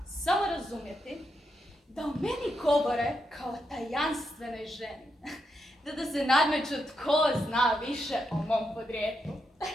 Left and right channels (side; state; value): both; normal; correlation 0.83